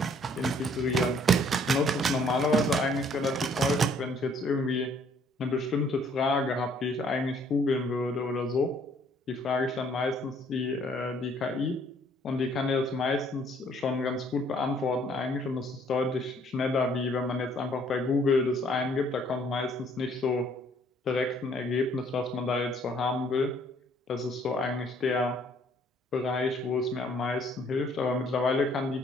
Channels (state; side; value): normal; both; correlation 0.62